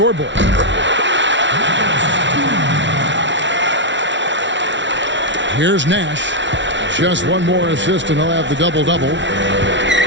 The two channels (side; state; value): left; late; 0.54 ms